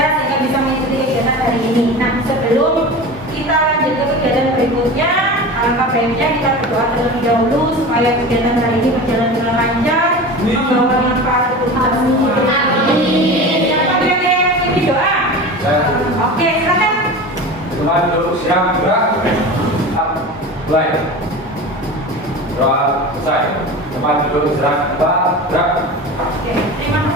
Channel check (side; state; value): both; normal; correlation 0.31